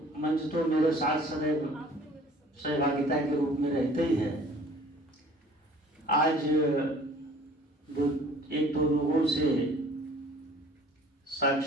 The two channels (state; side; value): normal; both; correlation 0.51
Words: मंच तो मेरे साथ सदैव सहभागिता के रूप में रहते ही है। आज एक दो लोगों से